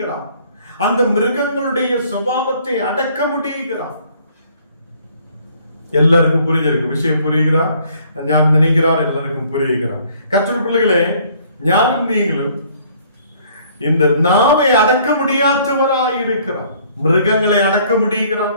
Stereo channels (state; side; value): inverted; both; correlation -0.60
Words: அந்த மிருகங்களுடைய சுபாவத்தை அடக்க முடியுகிறார். எல்லாருக்கும் புரிஞ்சிருக்கும் விஷயம், புரியுகிறார் ஞான் நினைக்கிறார், எல்லாருக்கும் புரியுகிறார். கர்த்தருடைய பிள்ளைகளே, ஞானும் நீங்களும் இந்த நாவை அடக்க முடியாதவராய் இருக்கிறார். மிருகங்களை அடக்க முடியுகிறார்,